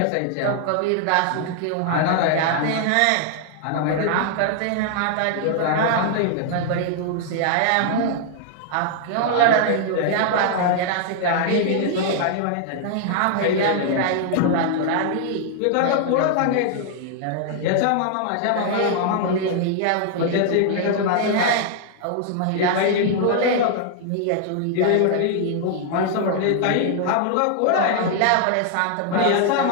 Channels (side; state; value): both; different; correlation 0.00